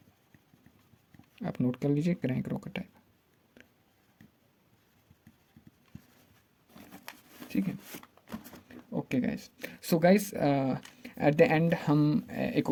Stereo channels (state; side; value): identical; both; correlation 1.00